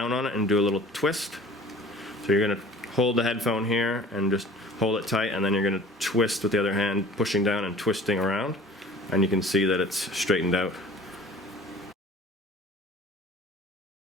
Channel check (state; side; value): normal; both; correlation 0.47